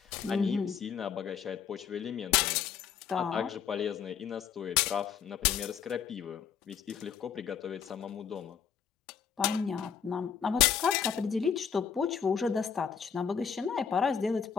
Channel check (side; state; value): right; quieter; 7.4 dB